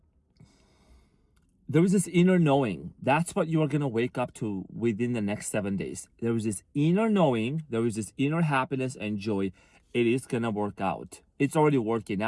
there is this inner knowing. That's what you are going to wake up to within the next 7 days. There is this inner knowing. There is this inner happiness and joy. It is going to work out. It's already working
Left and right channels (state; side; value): identical; both; correlation 1.00